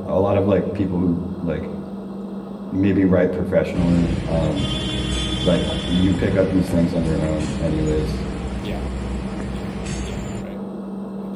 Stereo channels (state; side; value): identical; both; correlation 1.00